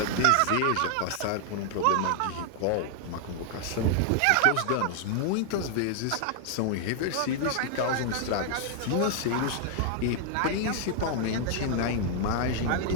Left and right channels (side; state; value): both; different; correlation 0.00